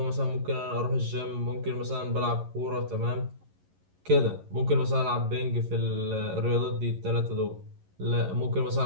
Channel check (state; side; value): late; left; 11 ms